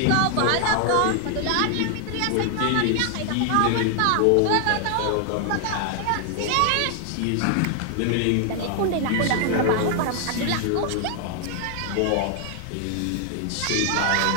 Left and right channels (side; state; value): both; different; correlation 0.00